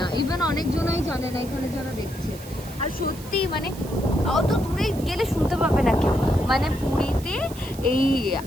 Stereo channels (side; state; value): right; noise; hiss, 17 dB below the sound